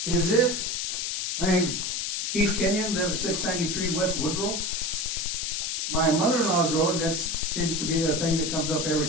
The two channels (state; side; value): noise; left; hiss, 1 dB below the sound